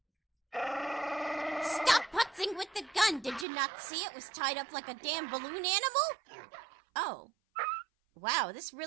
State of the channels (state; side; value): drops out; left; at 3.5 s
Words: Stop putzing with the gun! Did you not see it was tied up like a damn balloon animal? Oh. Wow, this